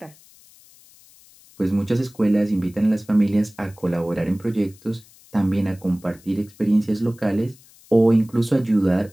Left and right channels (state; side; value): noise; left; hiss, 26 dB below the sound